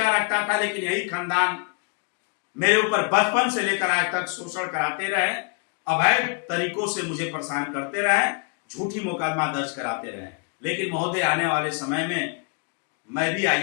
रखता था, लेकिन यही खानदान मेरे ऊपर बचपन से लेकर आज तक शोषण कराते रहे, अवैध तरीकों से मुझे परेशान करते रहे, झूठी मुकदमा दर्ज कराते रहे। लेकिन महोदय आने वाले समय में मैं भी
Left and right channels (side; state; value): right; quieter; 37.3 dB